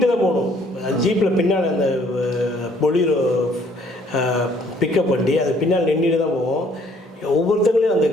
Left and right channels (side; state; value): both; normal; correlation 0.62